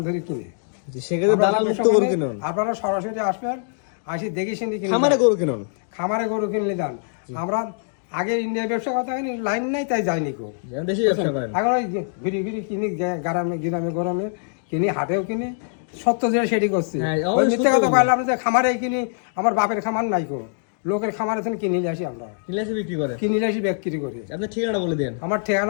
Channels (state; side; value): silent; right; digital silence